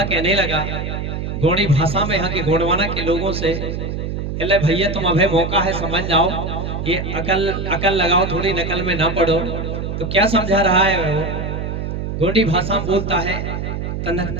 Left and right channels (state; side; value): noise; right; hum, 4 dB below the sound